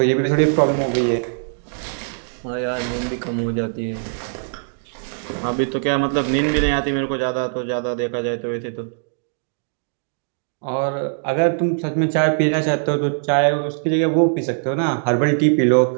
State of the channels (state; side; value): silent; left; digital silence